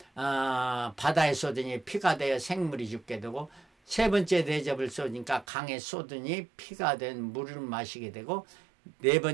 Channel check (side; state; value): left; drops out; at 5.5 s